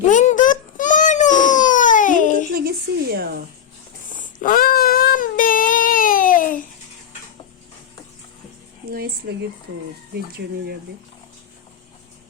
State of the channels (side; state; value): right; quieter; 8.8 dB